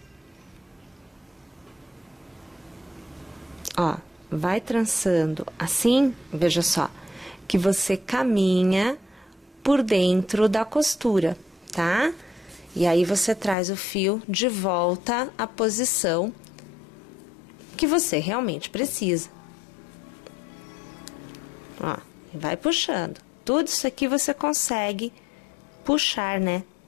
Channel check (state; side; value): drops out; right; at 13.6 s